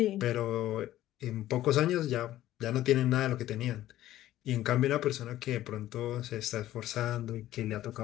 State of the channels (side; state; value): right; quieter; 14.1 dB